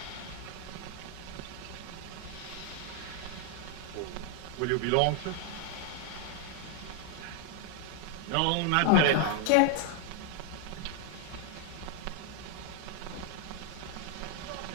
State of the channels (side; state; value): both; different; correlation 0.00